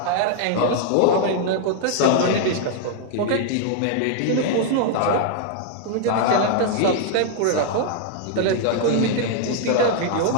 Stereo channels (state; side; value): different; both; correlation -0.01